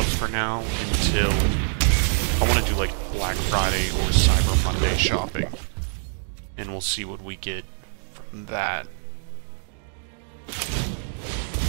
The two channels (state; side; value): silent; left; digital silence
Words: for now until I want to do like Black Friday or Cyber Monday shopping. And we'll see what we get from that.